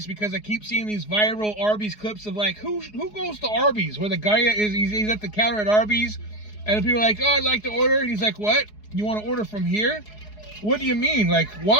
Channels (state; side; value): late; right; 4.8 ms